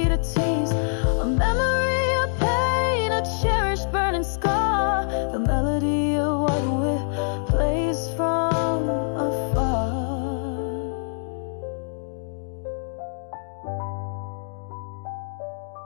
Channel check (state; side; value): silent; right; digital silence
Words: a tease, a memory, a pain, a cherished burning scar, the melody of what we plays from afar.